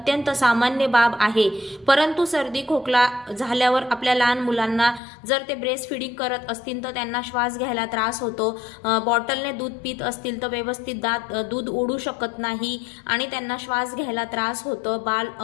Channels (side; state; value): right; drops out; at 5.0 s